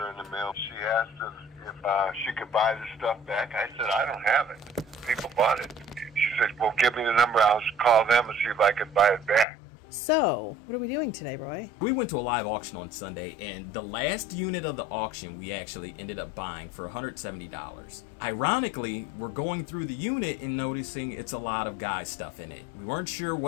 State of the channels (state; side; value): drops out; right; at 9.5 s